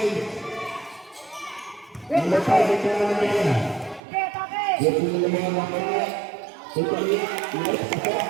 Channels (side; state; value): left; drops out; at 4.0 s